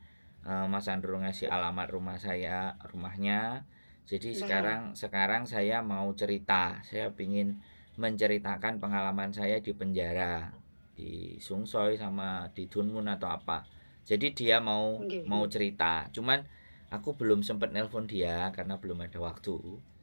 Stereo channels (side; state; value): both; inverted; correlation -1.00